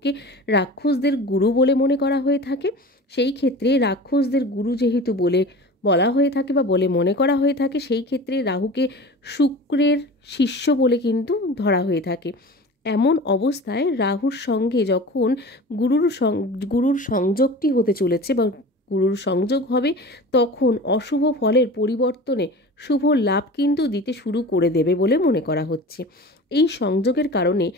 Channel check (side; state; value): both; normal; correlation 0.36